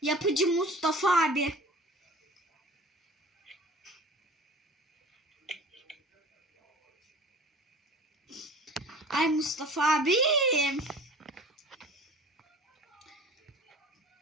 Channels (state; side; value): normal; both; correlation 0.43